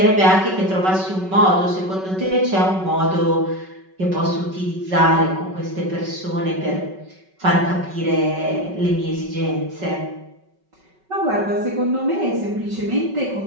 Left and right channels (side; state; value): left; late; 5.3 ms